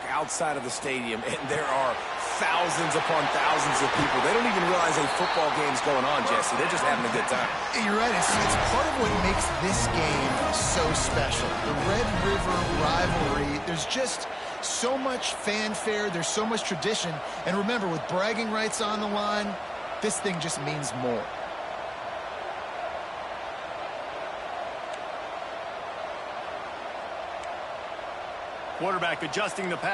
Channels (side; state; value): both; identical; correlation 1.00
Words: outside of the stadium, and there are thousands upon thousands of people. They don't even realize a football game's going on, Jesse. They're just having a good time. You're right. It's part of what makes this game so special. The Red River rivalry, there's just so much fanfare. There's so much tradition. And remember, with bragging rights on the line, this thing just means more. Quarterback adjusting the